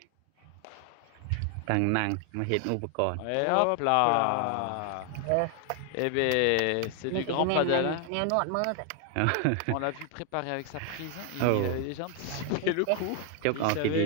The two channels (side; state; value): both; different; correlation 0.00